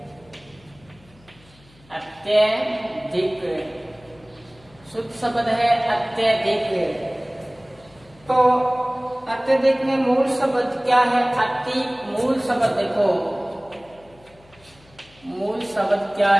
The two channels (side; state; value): left; noise; hum, 28 dB below the sound